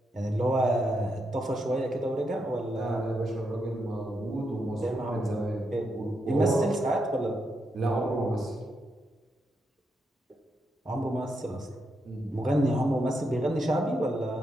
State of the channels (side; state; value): both; normal; correlation 0.82